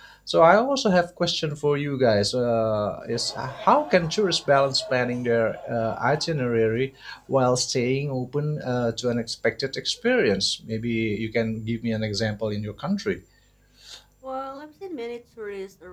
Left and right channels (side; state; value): both; identical; correlation 1.00